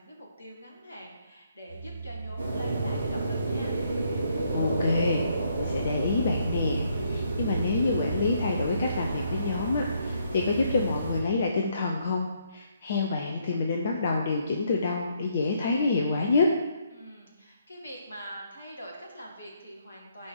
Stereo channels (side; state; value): both; inverted; correlation -0.72